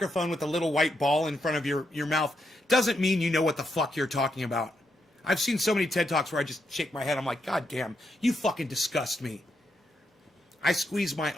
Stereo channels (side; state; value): both; normal; correlation 0.81